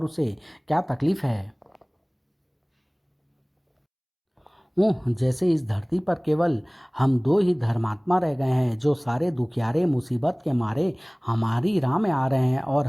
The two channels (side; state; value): both; identical; correlation 1.00